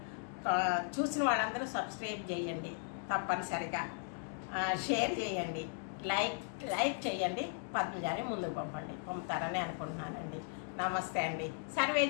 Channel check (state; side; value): silent; right; 53 dB below the other